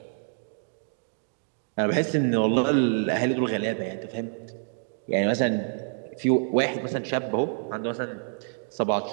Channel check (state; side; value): silent; left; digital silence